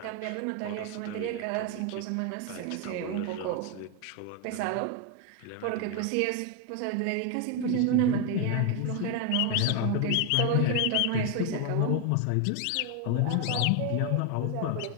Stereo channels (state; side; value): different; both; correlation 0.01